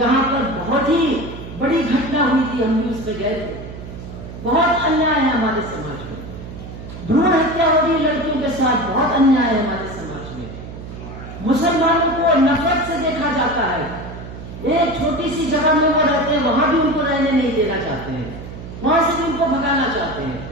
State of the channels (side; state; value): right; noise; hum, 12 dB below the sound